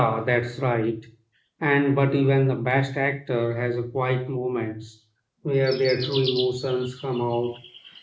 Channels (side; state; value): both; identical; correlation 1.00